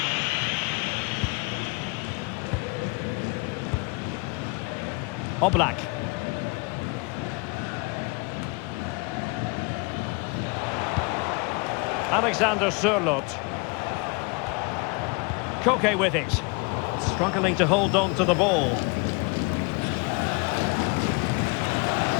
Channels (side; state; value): right; quieter; 29.3 dB